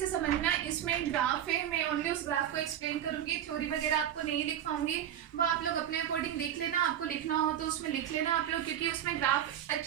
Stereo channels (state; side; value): quieter; left; 10.6 dB